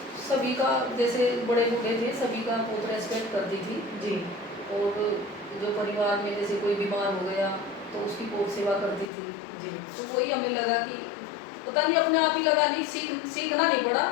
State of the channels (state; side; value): drops out; right; at 9.1 s